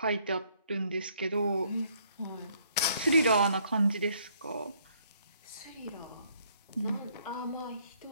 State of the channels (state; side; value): inverted; both; correlation -0.67